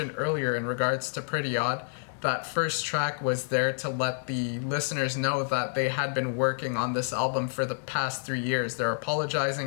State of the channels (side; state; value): right; silent; digital silence